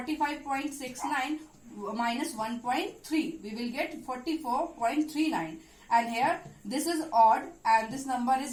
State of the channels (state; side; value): identical; both; correlation 1.00